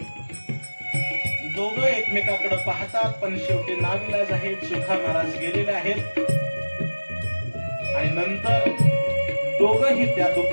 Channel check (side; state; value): both; inverted; correlation -1.00